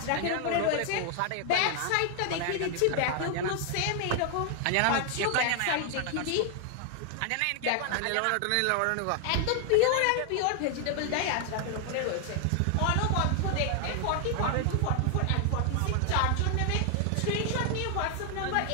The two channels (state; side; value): different; both; correlation 0.00